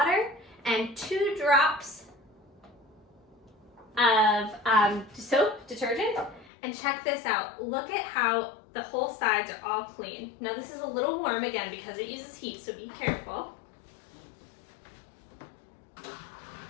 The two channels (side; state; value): right; drops out; at 6.5 s